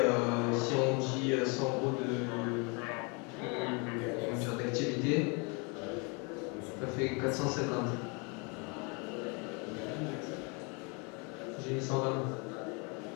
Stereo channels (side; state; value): right; quieter; 32.3 dB